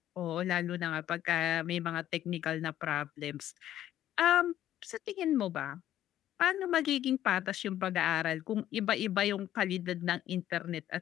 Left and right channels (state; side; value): quieter; right; 12.2 dB